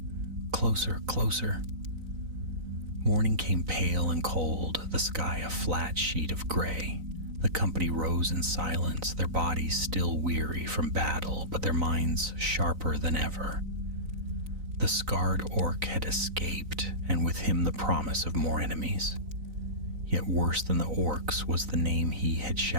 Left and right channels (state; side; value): late; left; 3.9 ms